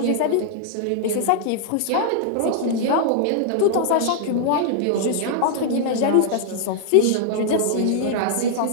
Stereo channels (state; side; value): different; both; correlation -0.01